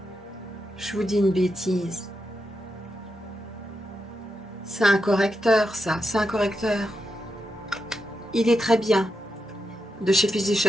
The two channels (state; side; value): normal; both; correlation 0.86